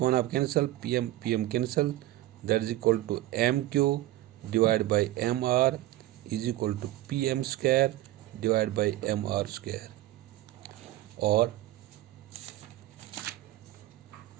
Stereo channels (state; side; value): quieter; left; 15.7 dB